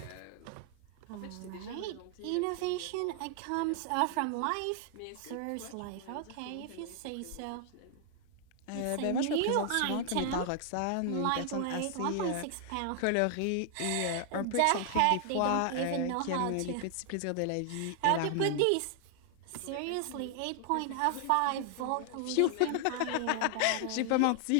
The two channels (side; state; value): both; different; correlation 0.00